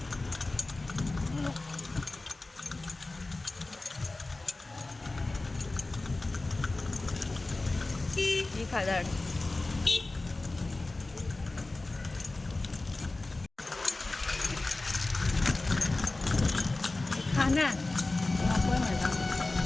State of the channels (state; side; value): quieter; right; 3.1 dB